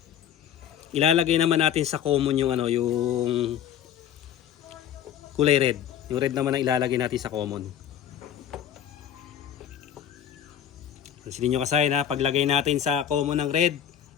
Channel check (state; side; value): quieter; right; 9.8 dB